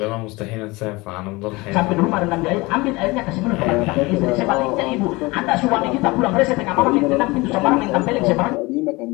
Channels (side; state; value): right; quieter; 23.1 dB